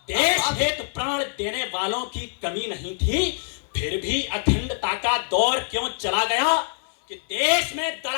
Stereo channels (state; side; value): silent; right; 62 dB below the other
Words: देश हेतु प्राण देने वालों की कमी नहीं थी, फिर भी अखंडता का दौर क्यों चला गया? कि देश में